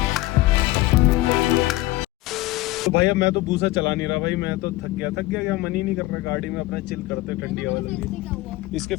तो भाई अब मैं तो भूसा चला नहीं रहा भाई, मैं तो थक गया क्या, मन ही नहीं कर रहा गाड़ी में अपना चिल करते, ठंडी हवा लग रही। इसके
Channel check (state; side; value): quieter; right; 18.0 dB